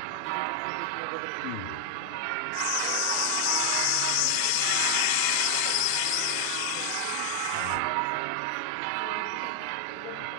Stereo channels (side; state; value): both; different; correlation 0.00